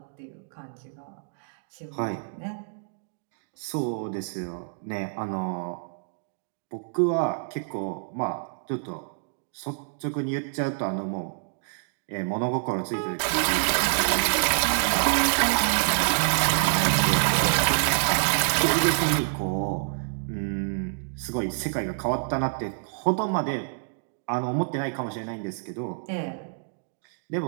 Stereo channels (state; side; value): silent; left; digital silence